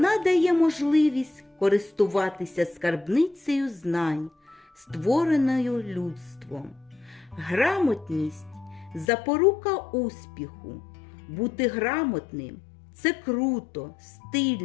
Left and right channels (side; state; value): right; drops out; at 9.1 s